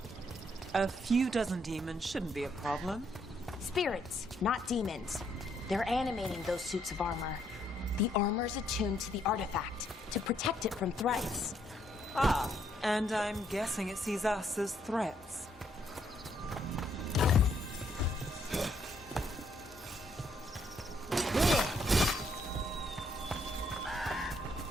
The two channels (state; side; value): normal; both; correlation 0.72